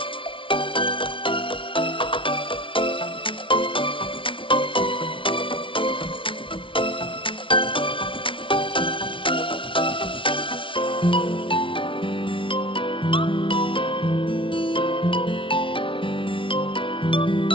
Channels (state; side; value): late; right; 0.25 ms